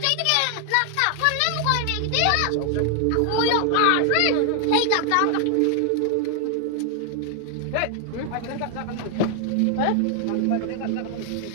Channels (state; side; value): different; both; correlation 0.00